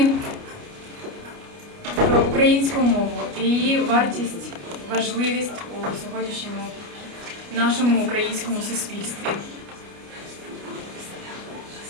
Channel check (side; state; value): left; late; 29 ms